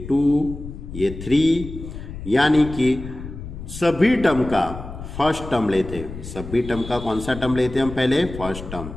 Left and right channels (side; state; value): left; noise; rumble, 11 dB below the sound